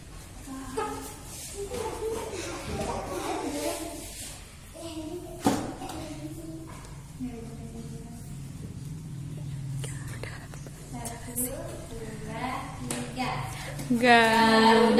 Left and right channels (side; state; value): both; identical; correlation 1.00